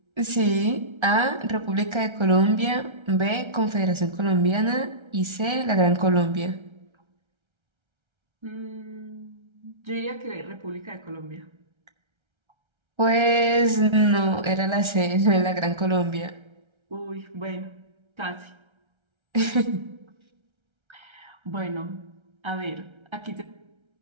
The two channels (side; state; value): left; late; 1.3 ms